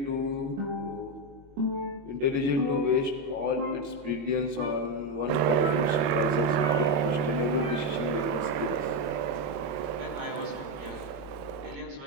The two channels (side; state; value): left; late; 21 ms